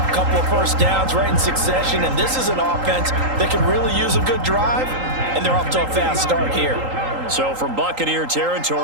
couple of first downs right in succession, and this is an offense that can really use a good drive, and they're off to a fast start here. So from Buccaneer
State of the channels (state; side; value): late; left; 3.8 ms